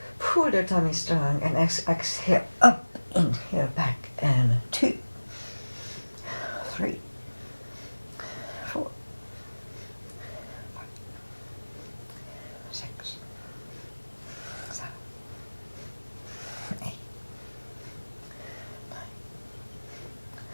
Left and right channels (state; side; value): inverted; both; correlation -1.00